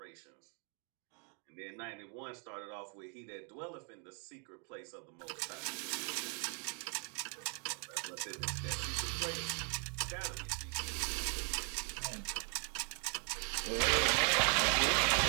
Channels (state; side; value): quieter; left; 39.7 dB